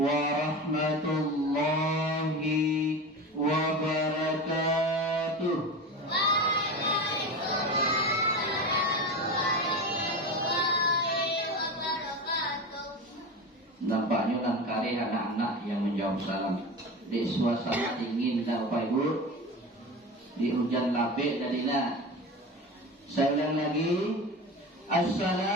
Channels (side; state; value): both; normal; correlation 0.27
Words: wabarakatuh. Nampaknya nang kari anak-anak yang menjawab salam di suasana dingin dan Bapak Ibu, di hujan labik dadina. Saya ulang lagi.